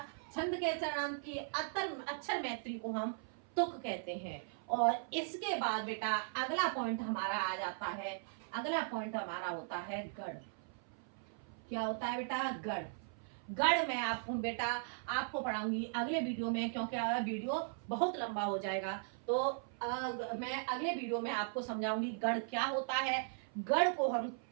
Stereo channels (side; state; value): left; silent; 52 dB below the other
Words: छंद के चरणांत की अक्षर मैत्री को हम तुक कहते हैं। और इसके बाद बेटा अगला पॉइंट हमारा आ जाता है, अगला पॉइंट हमारा होता है गढ़। क्या होता है बेटा? गढ़। गढ़ मैं आपको बेटा आपको पढ़ाऊंगी अगले वीडियो में, क्योंकि वीडियो बहुत लंबा हो जाएगा। तो मैं अगले वीडियो में आपको समझाऊंगी गढ़ क्या होता है, गढ़ को हम